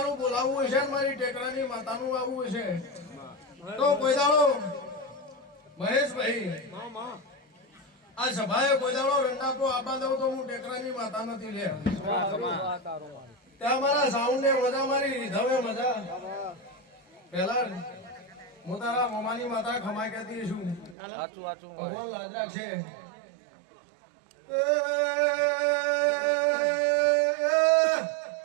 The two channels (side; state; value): left; drops out; at 21.0 s